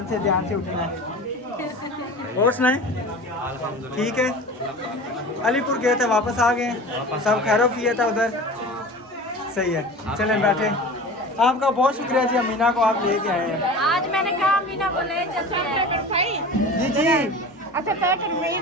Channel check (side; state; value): both; normal; correlation 0.35